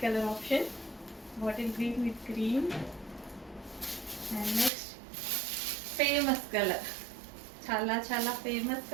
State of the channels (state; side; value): drops out; left; at 4.7 s